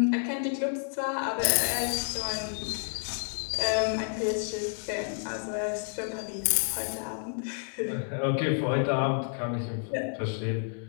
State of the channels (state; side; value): silent; right; 58 dB below the other